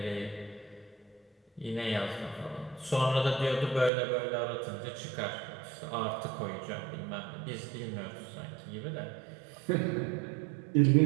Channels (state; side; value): drops out; left; at 3.9 s